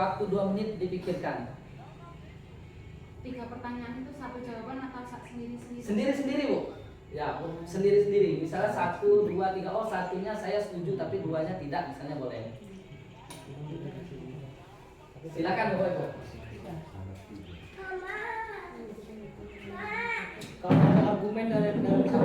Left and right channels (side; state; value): both; identical; correlation 1.00